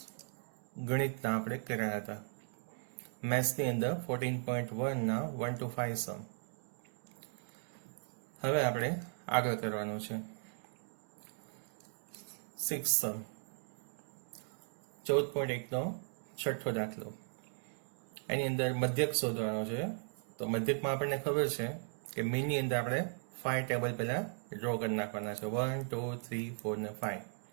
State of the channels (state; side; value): silent; left; 53 dB below the other